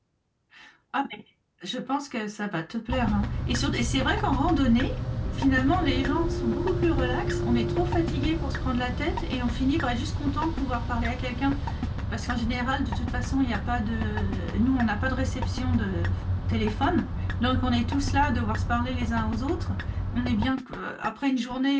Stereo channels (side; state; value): both; identical; correlation 1.00